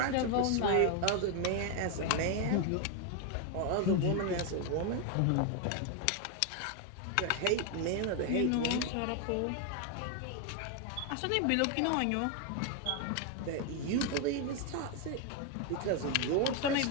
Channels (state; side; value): different; both; correlation 0.01